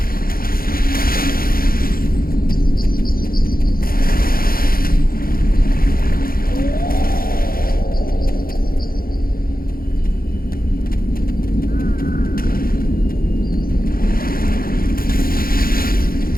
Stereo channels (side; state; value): right; late; 0.42 ms